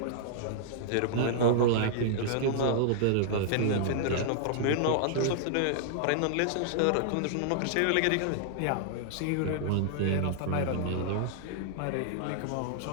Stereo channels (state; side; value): different; both; correlation -0.01